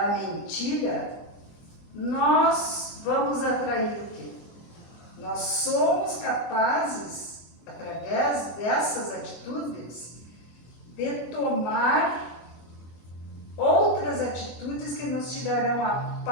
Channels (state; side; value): late; right; 24 ms